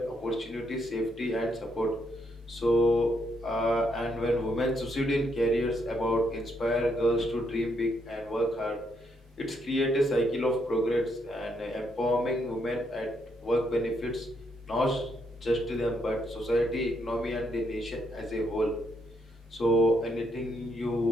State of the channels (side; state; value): both; normal; correlation 0.75